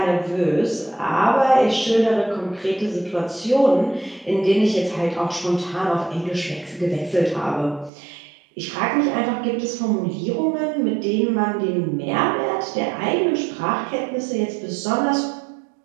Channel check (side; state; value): left; drops out; at 7.9 s